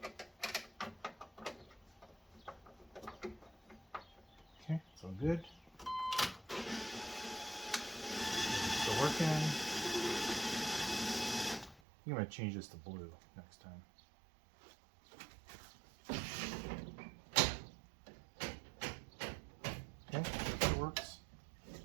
Okay, it's all good. Still working. I'm going to change this to blue next time. Okay, that works.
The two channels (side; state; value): left; drops out; at 11.8 s